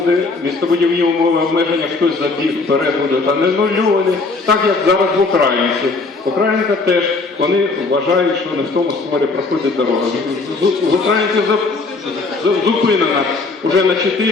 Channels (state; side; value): quieter; right; 3.8 dB